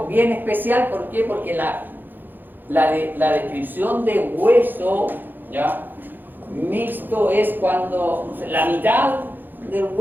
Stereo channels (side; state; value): left; late; 0.090 ms